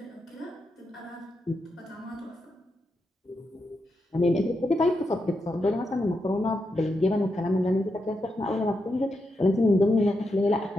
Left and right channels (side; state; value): both; normal; correlation 0.85